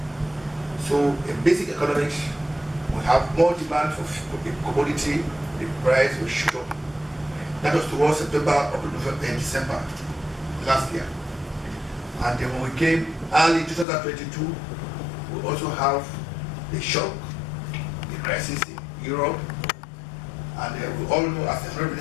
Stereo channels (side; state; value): right; drops out; at 13.9 s